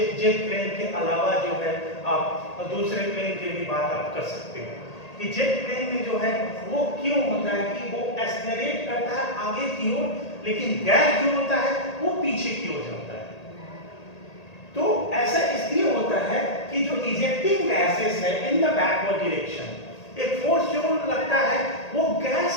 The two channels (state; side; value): late; right; 1.8 ms